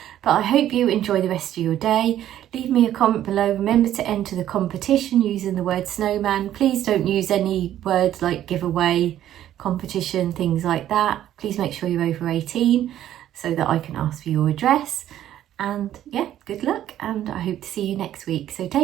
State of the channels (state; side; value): quieter; left; 11.9 dB